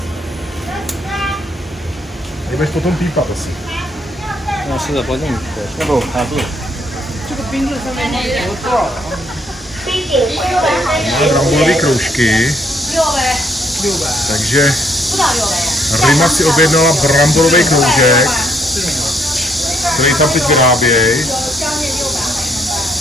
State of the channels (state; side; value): normal; both; correlation 0.69